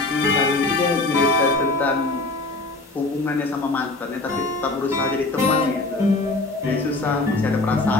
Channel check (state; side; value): quieter; right; 3.1 dB